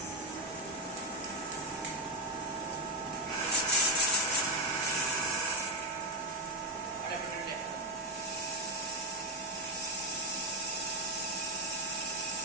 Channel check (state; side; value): normal; both; correlation 0.07